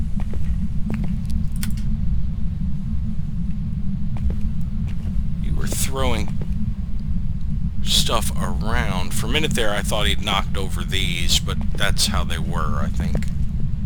You were throwing stuff around. For a minute there, I thought he'd knocked over these, but that's how they were, I think.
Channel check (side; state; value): both; identical; correlation 1.00